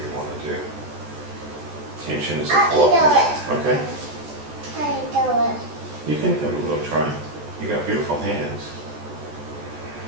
want to do. Tension is a I blockage. Okay, How you doing? you can have a little try. You got beautiful hands.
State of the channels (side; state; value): left; late; 14 ms